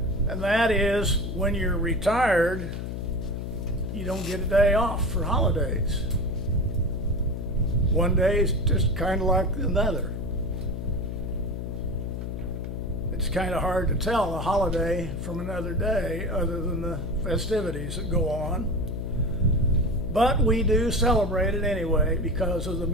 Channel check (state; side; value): noise; left; hum, 5 dB below the sound